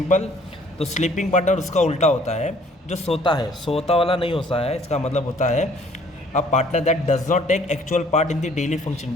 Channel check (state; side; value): normal; both; correlation 0.58